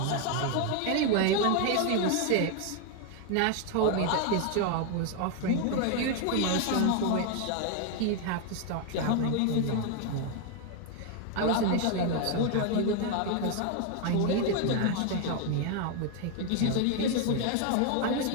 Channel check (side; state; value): both; different; correlation 0.01